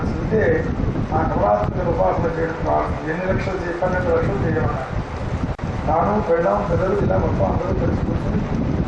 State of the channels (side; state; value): both; identical; correlation 1.00